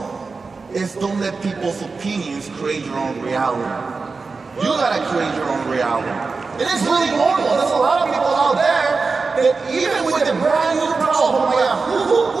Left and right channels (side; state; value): left; quieter; 4.3 dB